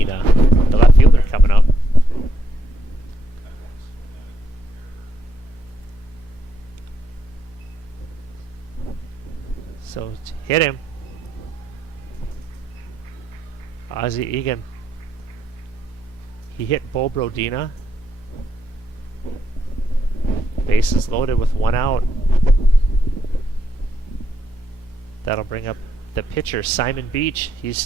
the left fielder, coming up. So hit him. Ozzie Egan. He hit Bo Brodina. Bases loaded with 1 out. That'll bring up the pitcher, Simon Beach.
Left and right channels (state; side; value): normal; both; correlation 0.78